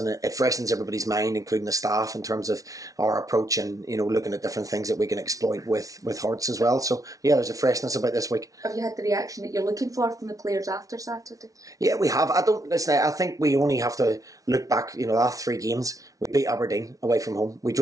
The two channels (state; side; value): late; left; 0.17 ms